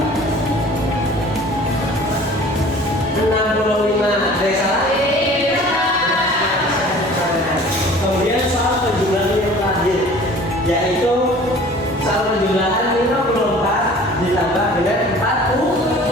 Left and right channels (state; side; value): normal; both; correlation 0.47